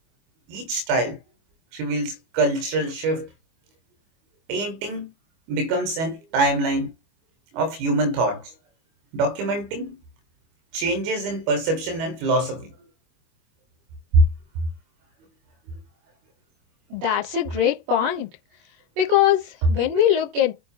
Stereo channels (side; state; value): left; late; 25 ms